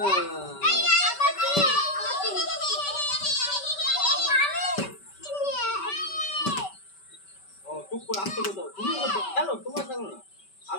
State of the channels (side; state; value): right; late; 5.2 ms